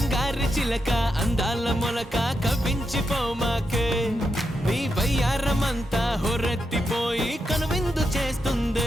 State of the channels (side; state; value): both; normal; correlation 0.85